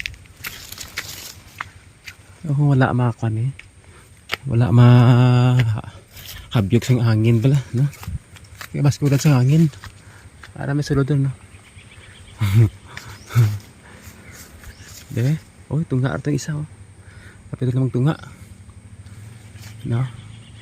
Oh, wala makan eh. Wala habyog sang hangin pala, no? Kaya baskulan sa hangin. Para may sulod doon, no? De, oh, tunga ito isa, oh. Kapit lamang tunga. No?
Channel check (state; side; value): identical; both; correlation 1.00